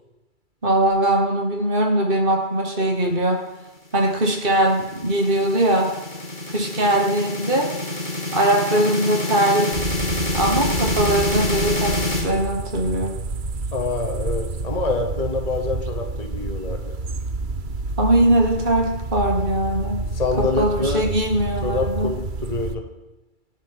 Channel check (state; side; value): late; left; 2.3 ms